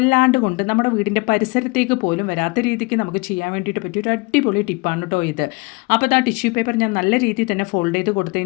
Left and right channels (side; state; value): right; quieter; 27.2 dB